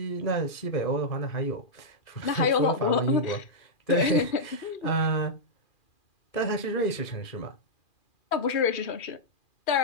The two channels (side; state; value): right; late; 2.4 ms